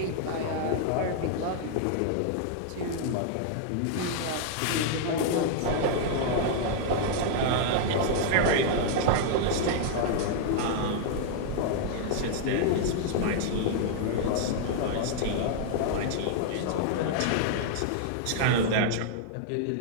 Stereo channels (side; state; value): both; different; correlation -0.01